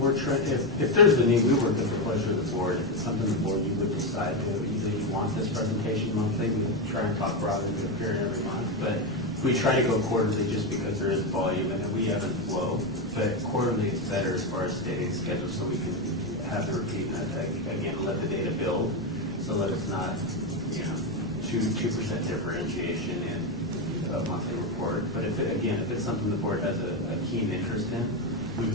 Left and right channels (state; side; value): normal; both; correlation 0.10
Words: trying, if there's a need, we work at the pleasure of the board. If it's something the board you would decide to, either you want this presentation monthly, we try and talk broadly to appear every month, but we try to go quarterly just because there is volume and we ebb and flow. But quarterly is better as far as stating schedule, so we can have the repeat and again, let the data build, so that it's not, 2% differentiation in a monthly report. But if it's something the board has a keen interest in, we